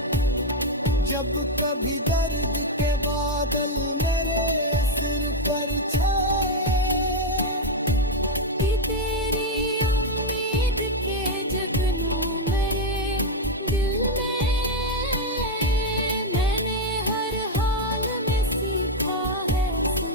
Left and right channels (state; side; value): normal; both; correlation 0.02